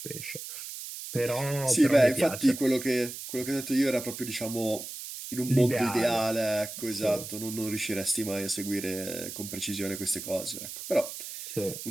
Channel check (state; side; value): noise; right; hiss, 9 dB below the sound